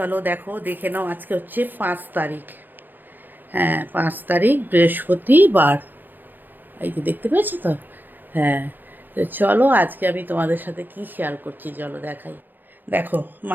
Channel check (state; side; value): late; left; 0.089 ms